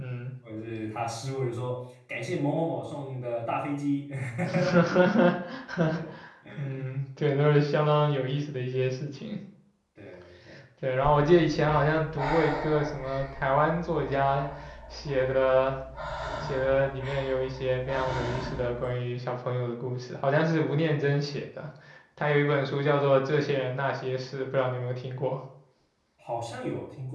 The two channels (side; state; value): both; identical; correlation 1.00